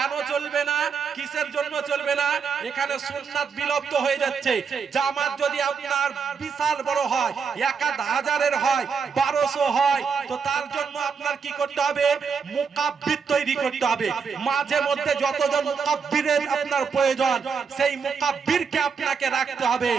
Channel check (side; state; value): left; quieter; 5.9 dB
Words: চলবে না? কিসের জন্য চলবে না? এখানে সুন্নাত বিলুপ্ত হয়ে যাচ্ছে। জামাত যদি আপনার বিশাল বড় হয়, 1000-এর হয়, 1200 হয়, তো তার জন্য আপনার কি করতে হবে? মুকাব্বির তৈরি করতে হবে। মাঝে মধ্যে যতজন মুকাব্বিরের আপনার প্রয়োজন, সেই মুকাব্বিরকে আপনাকে রাখতে হবে।